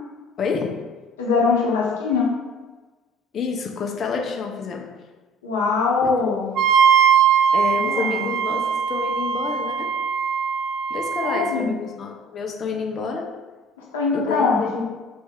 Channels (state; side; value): normal; both; correlation 0.49